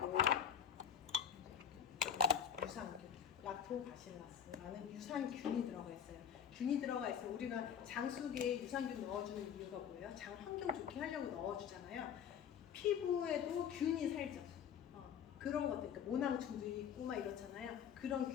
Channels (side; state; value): right; quieter; 8.2 dB